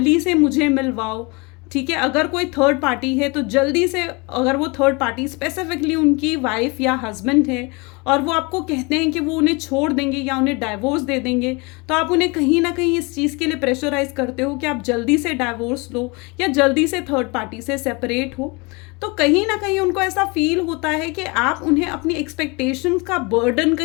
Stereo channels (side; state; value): right; quieter; 28.0 dB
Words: से मुझे मिलवाओ। ठीक है, अगर कोई थर्ड पार्टी है तो जल्दी से, अगर वो थर्ड पार्टी स्पेसिफिकली उनकी वाइफ या हस्बैंड है और वो आपको कहते हैं कि वो उन्हें छोड़ देंगे या उन्हें डाइवोर्स दे देंगे, तो आप उन्हें कहीं ना कहीं इस चीज़ के लिए प्रेशराइज करते हो कि आप जल्दी से डाइवोर्स लो या जल्दी से थर्ड पार्टी से सेपरेट हो। तो कहीं ना कहीं उनको ऐसा फील होता है कि आप उन्हें अपनी एक्सपेक्टेशंस का बर्डन